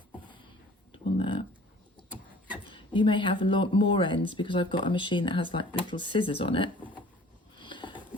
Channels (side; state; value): both; normal; correlation 0.49